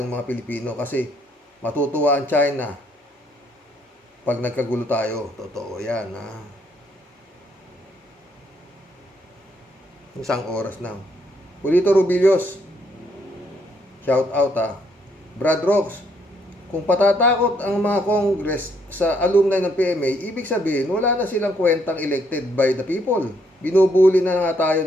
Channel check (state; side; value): normal; both; correlation 0.71